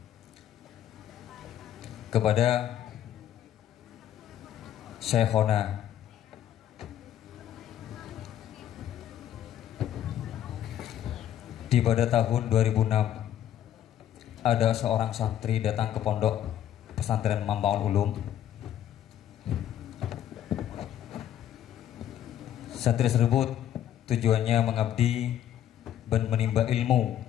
kepada Syekhona. Di pada tahun 2006 ada seorang santri datang ke pondok pesantren Mambaul Ulum. Santri tersebut tujuannya mengabdi dan menimba ilmu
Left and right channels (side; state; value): right; quieter; 11.0 dB